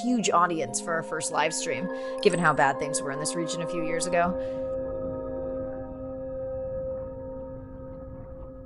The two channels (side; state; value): both; identical; correlation 1.00